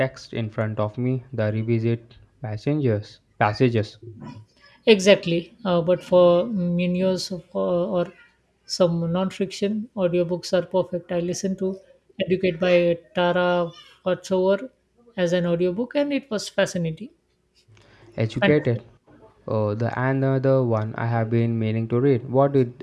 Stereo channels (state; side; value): identical; both; correlation 1.00